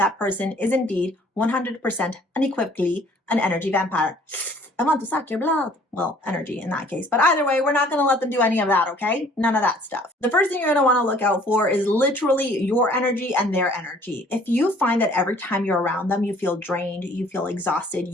person is indeed 100% unequivocally an energy vampire. I want to suck your blood. Well, energy in that case. But either way, we're not going to let them do any of that, okay? None of that stuff. The first thing you're going to want to look out for is literally your energy and their energy. If you find that every time you're around them, you feel drained, you feel exhausted,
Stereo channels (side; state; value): both; normal; correlation 0.56